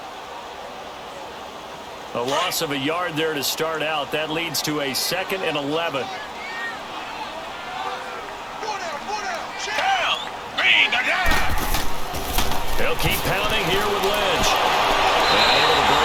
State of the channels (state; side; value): identical; both; correlation 1.00